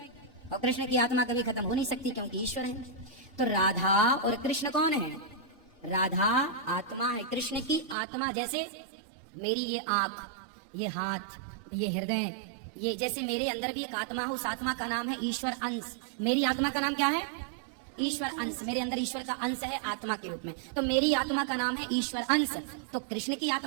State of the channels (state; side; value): drops out; left; at 8.0 s